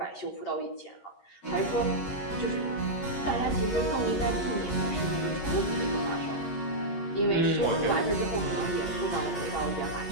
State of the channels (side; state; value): right; late; 11 ms